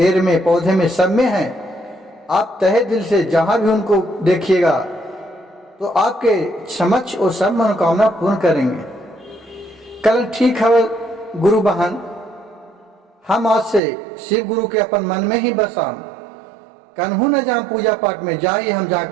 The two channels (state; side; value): drops out; left; at 13.8 s